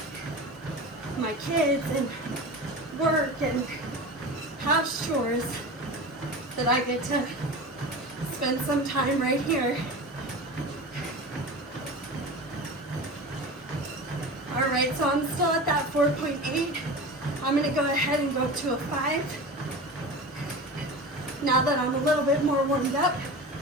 my kids and work and house chores, that I get to spend some time right here. All right, so I'm still at that 4.8. I'm gonna go ahead and go up to a 5. Now that I'm a little bit more warmed up,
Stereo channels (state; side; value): normal; both; correlation 0.31